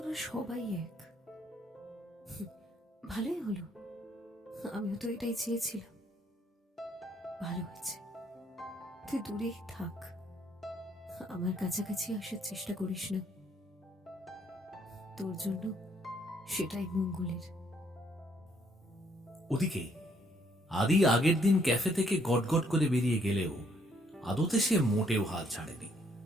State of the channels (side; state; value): both; normal; correlation 0.68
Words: সবাই এক। ভালোই হলো, আমিও তো এটাই চেয়েছিলাম। ভালো হয়েছে, তুই দূরেই থাক, আমার কাছাকাছি আসার চেষ্টা করিস না। তোর জন্য সেটাই মঙ্গলের। ওদিকে আদি আগের দিন ক্যাফে থেকে গটগট করে বেরিয়ে গেলেও আদতে সে মোটেও হাল ছাড়েনি।